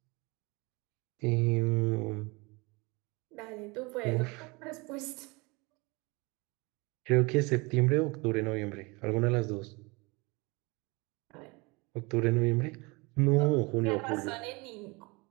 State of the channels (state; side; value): quieter; left; 26.7 dB